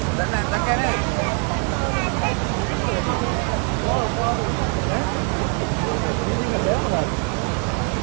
දැන් නැත්තම් කෑනේ.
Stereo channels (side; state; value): left; quieter; 38.2 dB